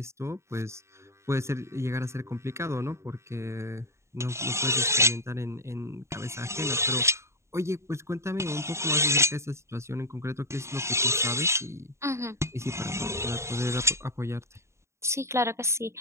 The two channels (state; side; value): late; left; 0.13 ms